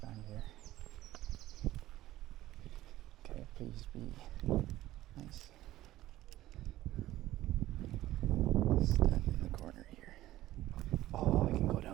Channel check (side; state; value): left; quieter; 15.2 dB